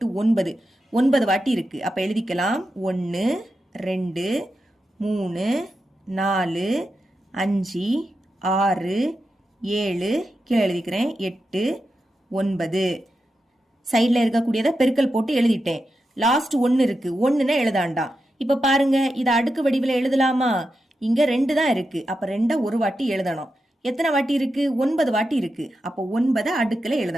9. 9 வாட்டி இருக்கு. அப்ப எழுதிக்கலாம். 1 2 3 4 5 6 7. கீழே எழுதிக்கிறேன். 8 9. சைட்ல இருக்கக்கூடியத பெருக்கல் போட்டு எழுதிட்டேன். லாஸ்ட் 1 இருக்கு. 1ன்னு எழுதாண்டா. இப்ப பாருங்க, இத அடுக்கு வடிவில எழுதலாமா? இங்க 2 தான் இருக்கு. அப்ப 2 ஒரு வாட்டி எழுதணும். எத்தனை வாட்டி இருக்கு? 9 வாட்டி இருக்கு. அப்ப 9 அடுக்குல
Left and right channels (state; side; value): normal; both; correlation 0.88